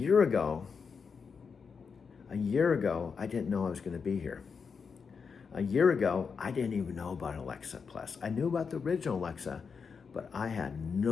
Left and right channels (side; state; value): right; quieter; 5.7 dB